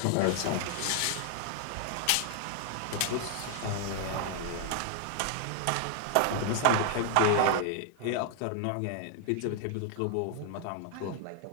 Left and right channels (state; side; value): different; both; correlation 0.00